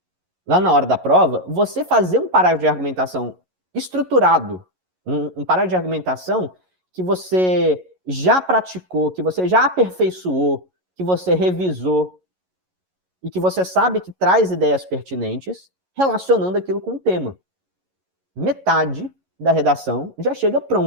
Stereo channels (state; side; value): late; left; 11 ms